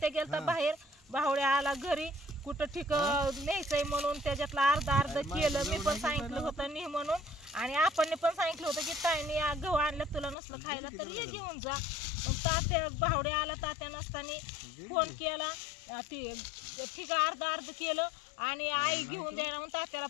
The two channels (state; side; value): drops out; right; at 10.4 s